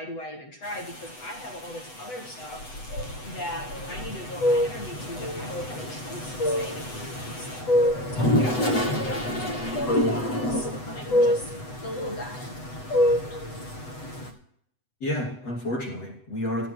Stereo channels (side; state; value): right; late; 8.0 ms